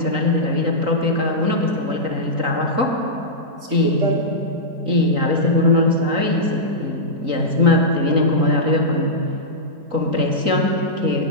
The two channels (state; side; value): late; left; 3.8 ms